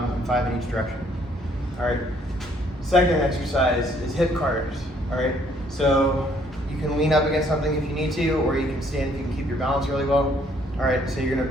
5 in each direction. All right, second exercise is hip CARs. All right, so you can lean up against something if you need to, or you can stand if you can keep your balance really well. All right, so you're gonna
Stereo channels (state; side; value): normal; both; correlation 0.65